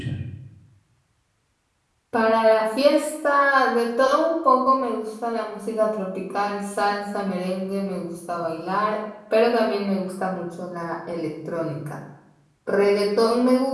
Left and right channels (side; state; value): both; identical; correlation 1.00